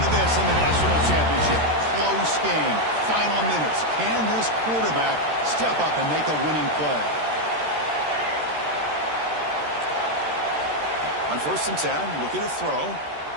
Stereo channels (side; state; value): left; late; 13 ms